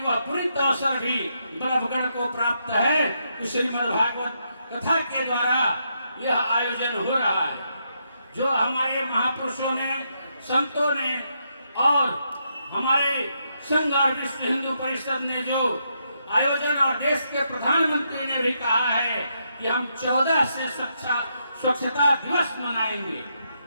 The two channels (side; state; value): both; inverted; correlation -0.79